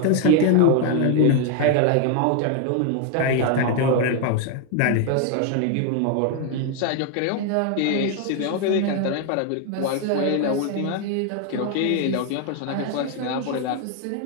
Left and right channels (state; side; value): different; both; correlation 0.00